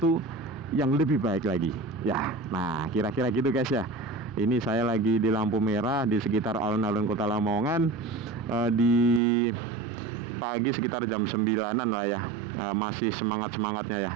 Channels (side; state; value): left; drops out; at 9.2 s